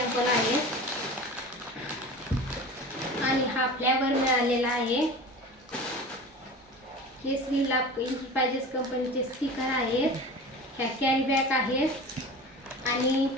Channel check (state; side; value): normal; both; correlation 0.35